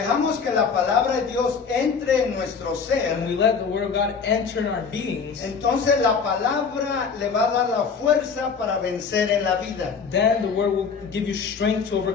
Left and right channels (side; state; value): right; quieter; 5.7 dB